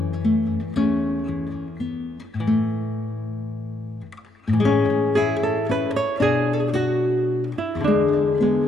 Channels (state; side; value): normal; both; correlation 0.77